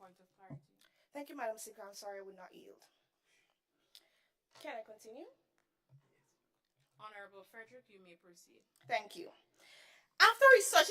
of clarity? Thank you, Madam Speaker. I'm sorry I would not yield. Can I continue? Honorable Frederick, you may proceed. Thank you. After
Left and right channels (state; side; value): identical; both; correlation 1.00